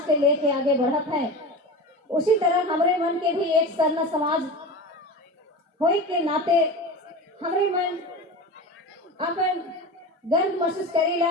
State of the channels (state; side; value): normal; both; correlation 0.29